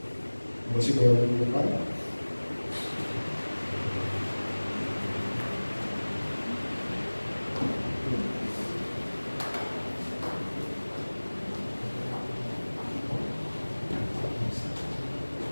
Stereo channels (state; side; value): inverted; both; correlation -1.00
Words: Masih boleh dibuka.